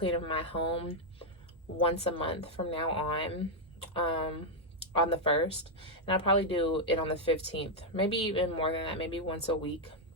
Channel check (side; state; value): both; normal; correlation -0.01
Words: of my home once a month from now on the 1st. And I'll probably do it on the 15th, maybe even more than that, maybe once a week,